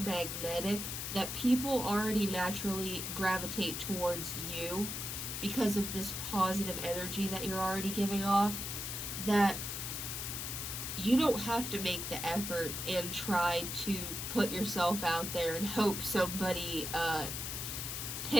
that people already naturally gravitate towards you because of this positive energy that you're already giving off, that you don't have to make the effort and try to put yourself out there and hope somebody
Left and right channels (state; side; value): noise; left; hiss, 4 dB below the sound